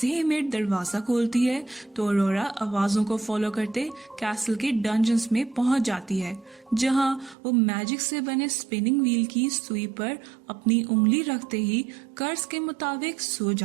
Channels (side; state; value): left; drops out; at 7.4 s